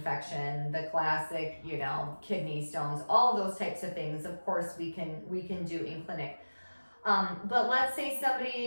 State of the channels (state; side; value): inverted; both; correlation -1.00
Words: the classic, kidney stones, all those types of things, of course, we can do in clinic. But let's say